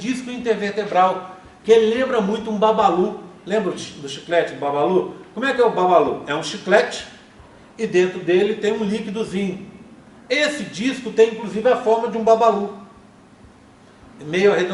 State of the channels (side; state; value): both; identical; correlation 1.00